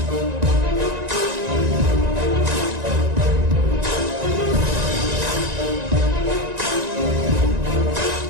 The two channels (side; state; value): left; late; 1.9 ms